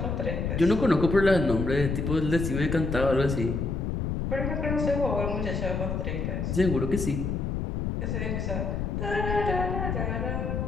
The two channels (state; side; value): noise; left; rumble, 1 dB below the sound